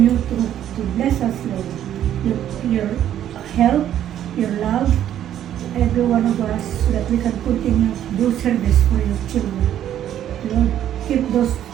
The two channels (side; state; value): left; quieter; 11.0 dB